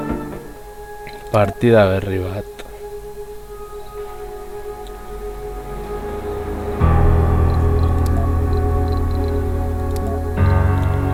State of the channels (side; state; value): both; identical; correlation 1.00